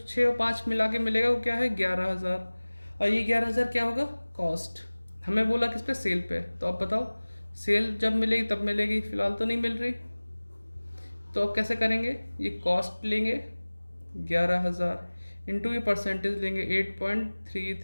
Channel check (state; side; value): inverted; both; correlation -1.00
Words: और 5 मिला के मिलेगा वो क्या है 11000, और ये 11000 क्या होगा, कॉस्ट। हमें बोला किस पे, सेल पे। तो अब बताओ सेल जब मिलेगी तब मिलेगी, फिलहाल तो नहीं मिल रही। तो अब कैसे करेंगे, ये कॉस्ट लेंगे 11000 इंटू ये परसेंटेज लेंगे